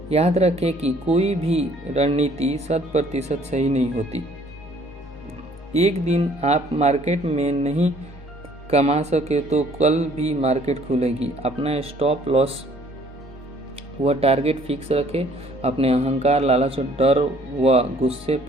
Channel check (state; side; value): normal; both; correlation 0.58